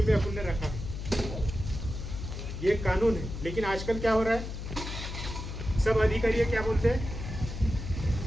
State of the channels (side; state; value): left; noise; hum, 7 dB below the sound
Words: पे अपन ने रखा है, ये कानून है। लेकिन आजकल क्या हो रहा है, सब अधिकारी क्या बोलते हैं,